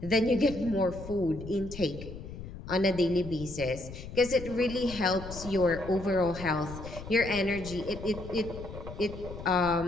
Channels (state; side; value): noise; left; rumble, 11 dB below the sound